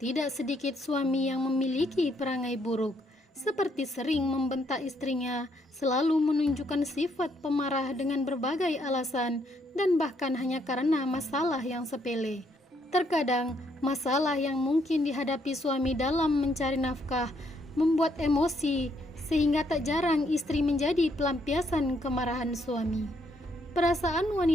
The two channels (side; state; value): both; normal; correlation 0.72